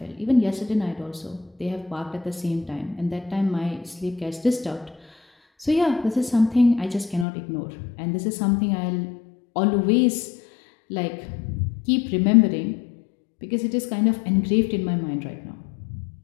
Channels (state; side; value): drops out; right; at 7.2 s